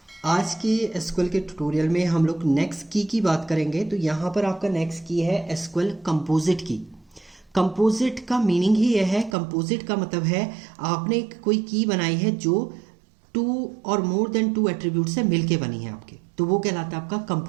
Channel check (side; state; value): left; drops out; at 9.3 s